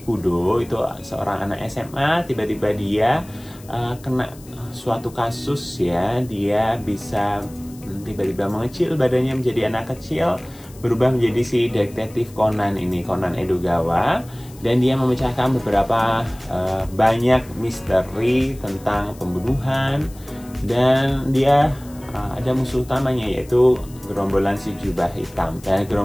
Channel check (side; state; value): left; noise; hiss, 23 dB below the sound